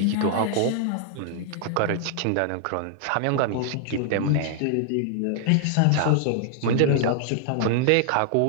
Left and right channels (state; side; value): different; both; correlation 0.00